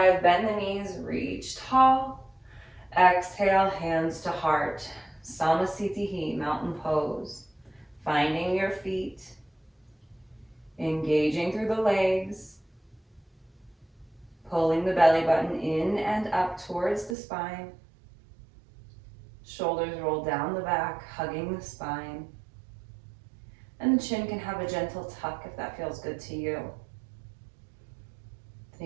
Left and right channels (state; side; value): drops out; left; at 17.2 s